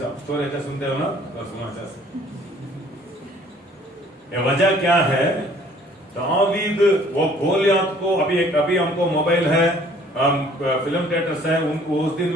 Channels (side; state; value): both; normal; correlation 0.56